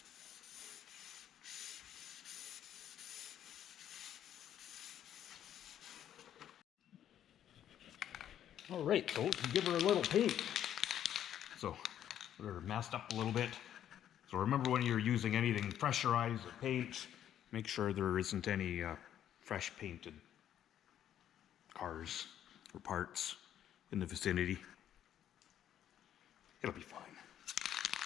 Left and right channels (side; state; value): right; quieter; 10.6 dB